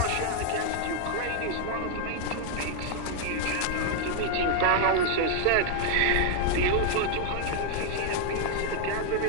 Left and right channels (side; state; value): both; different; correlation 0.00